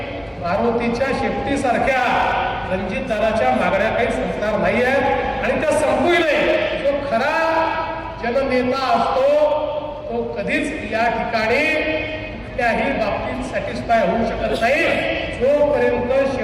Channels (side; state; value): both; identical; correlation 1.00